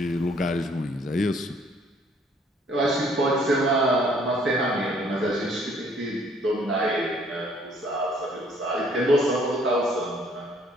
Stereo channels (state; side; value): normal; both; correlation 0.61